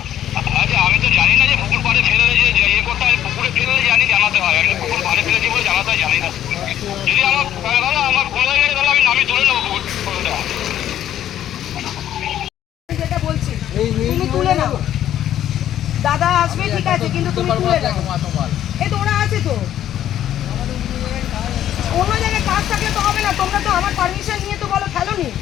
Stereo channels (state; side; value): quieter; right; 11.4 dB